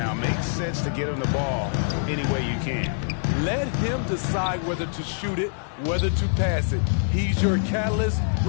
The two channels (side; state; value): right; silent; digital silence